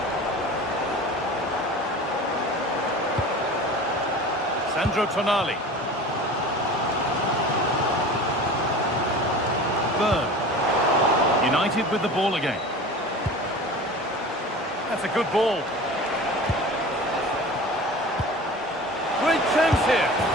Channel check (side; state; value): both; normal; correlation 0.37